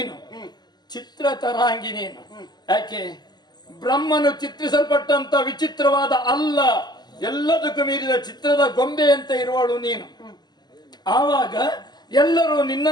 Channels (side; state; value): right; late; 0.21 ms